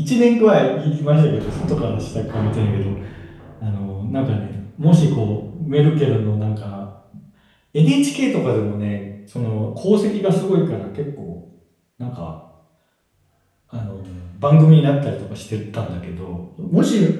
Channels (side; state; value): both; identical; correlation 1.00